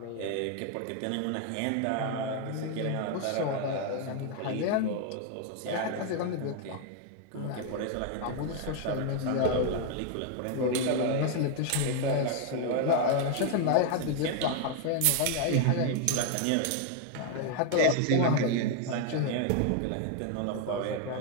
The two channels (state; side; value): different; both; correlation 0.01